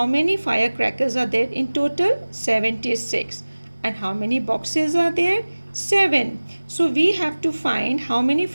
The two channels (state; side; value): inverted; both; correlation -1.00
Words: many firecrackers are there in total? 76. And how many boxes are there? 7. So we have to find how many